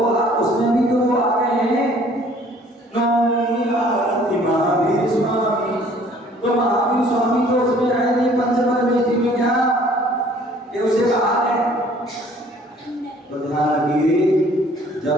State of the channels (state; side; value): normal; both; correlation 0.56